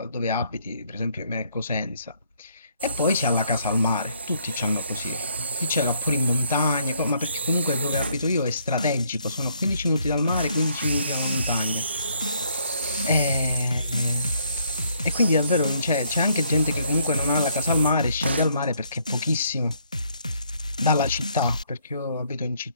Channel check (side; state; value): both; inverted; correlation -0.68